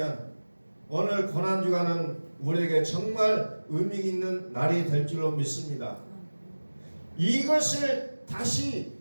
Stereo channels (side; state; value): both; inverted; correlation -1.00